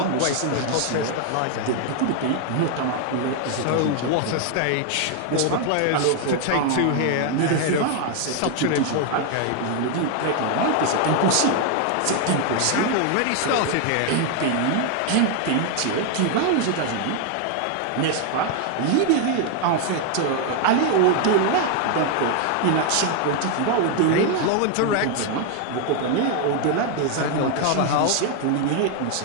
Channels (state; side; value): different; both; correlation 0.00